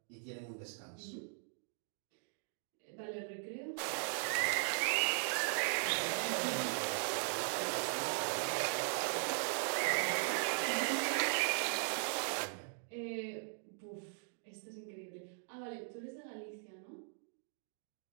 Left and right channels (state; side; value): silent; left; digital silence